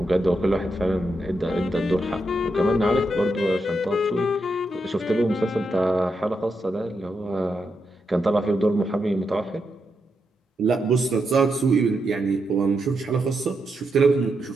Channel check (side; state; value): both; normal; correlation 0.84